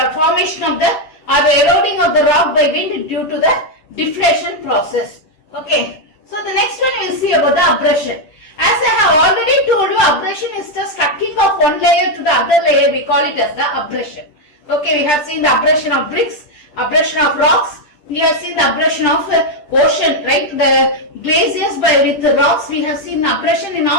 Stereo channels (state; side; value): late; right; 10 ms